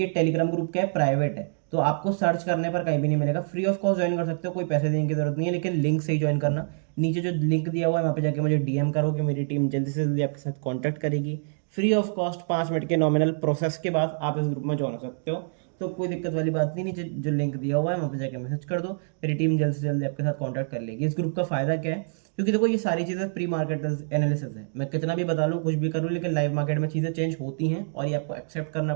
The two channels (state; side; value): silent; left; digital silence